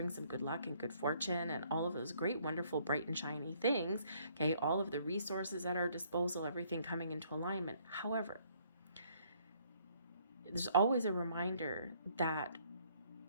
some good luck and good fortune and all of those great, wonderful, bright and shiny things. Okay, all of the resources at our disposal, everything coming into alignment. However, there's always a reminder that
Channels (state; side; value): inverted; both; correlation -0.65